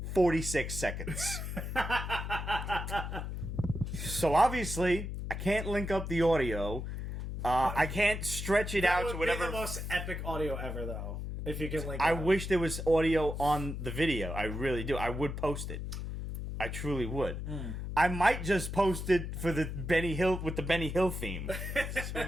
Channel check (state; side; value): noise; left; hum, 5 dB below the sound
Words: 46 seconds. So obviously, I can't link up the audio. I can't stretch it out to whatever. Be the most epic audio ever, though. If you can link. I it up. wish there was audio on the video. I really do. I would post it. I truly would. I might just post it for the Benny Hill with the Benny Hill theme. Who